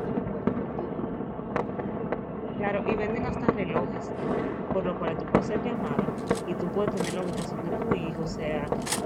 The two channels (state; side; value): identical; both; correlation 1.00